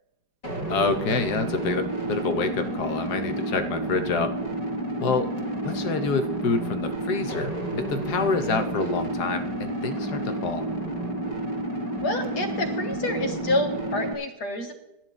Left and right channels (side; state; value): right; late; 4.9 ms